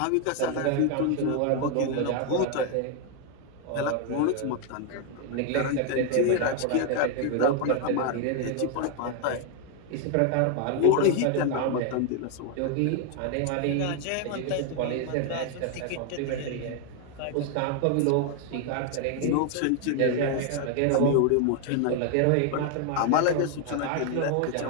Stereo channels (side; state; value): both; different; correlation 0.01